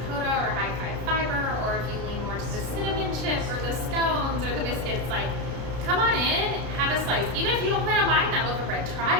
or high five fiber, or if you lean more to the cinnamon chip or the scones or the biscuits, like, come on in, have a slice. Even if you don't plan on buying that loaf of bread, try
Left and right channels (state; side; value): late; left; 33 ms